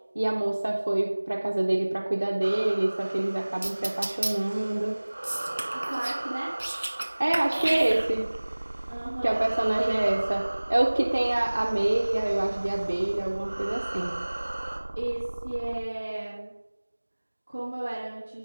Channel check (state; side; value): inverted; both; correlation -1.00